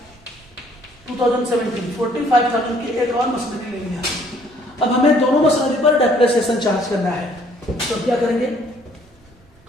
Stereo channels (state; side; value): normal; both; correlation 0.61